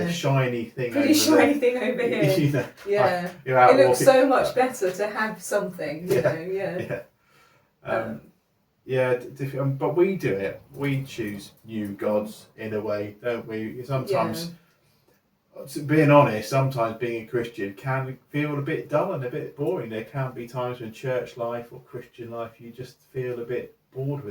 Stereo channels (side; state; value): both; identical; correlation 1.00